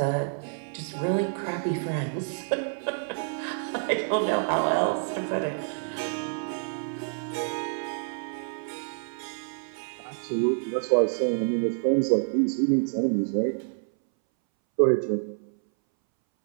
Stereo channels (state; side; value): silent; left; 59 dB below the other